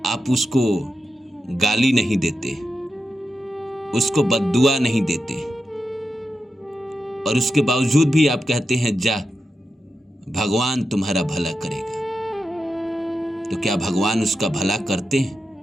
आप उसको गाली नहीं देते, उसको बद्दुआ नहीं देते, और उसके बावजूद भी आप कहते हैं जा भगवान तुम्हारा भला करेगा। तो क्या भगवान उसका भला करते हैं?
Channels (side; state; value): both; normal; correlation 0.89